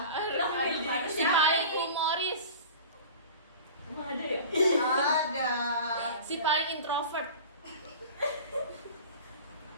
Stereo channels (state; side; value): inverted; both; correlation -0.37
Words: Si paling humoris. Emang ada ya? Ada. Si paling introvert.